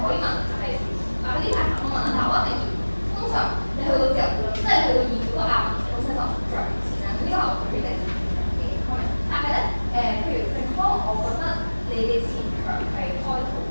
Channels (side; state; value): both; inverted; correlation -1.00